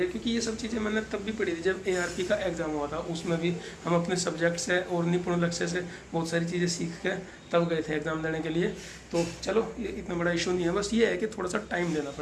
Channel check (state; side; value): identical; both; correlation 1.00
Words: क्योंकि ये सब चीज़ें मैंने तब भी पढ़ी थी जब ARP का एग्ज़ाम हुआ था। उसमें भी हम अपने सब्जेक्ट से और निपुण लक्ष्य से बहुत सारी चीज़ें सीख के तब गए थे एग्ज़ाम देने के लिए। तो चलो ये इतना बड़ा इशू नहीं है, बस ये है कि थोड़ा सा टाइम देना